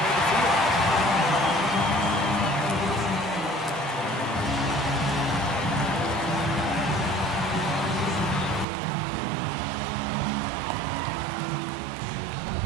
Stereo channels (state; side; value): drops out; left; at 8.7 s